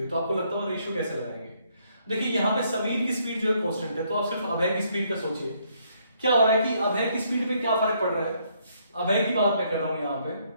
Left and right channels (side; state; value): both; inverted; correlation -0.70